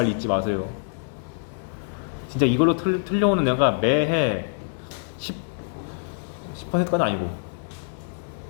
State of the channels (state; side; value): silent; right; digital silence